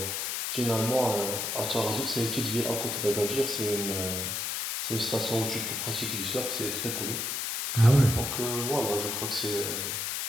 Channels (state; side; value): noise; left; hiss, 2 dB below the sound